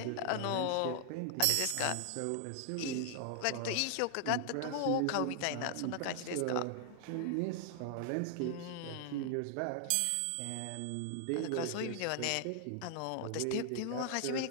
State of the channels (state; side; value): different; both; correlation 0.00